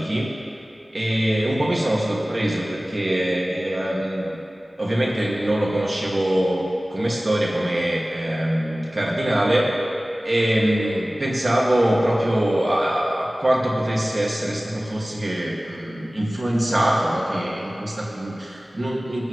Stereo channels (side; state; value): both; normal; correlation 0.97